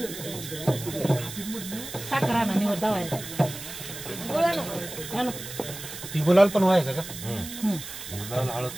साखर आणा निवड दावायला ती गुलाल पण व्हायचं का?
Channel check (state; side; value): noise; right; hiss, 11 dB below the sound